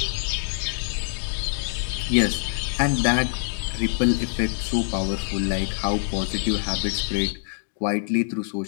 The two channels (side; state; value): right; silent; digital silence